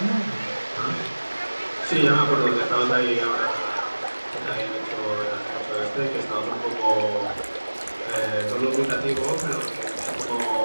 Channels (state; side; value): inverted; both; correlation -1.00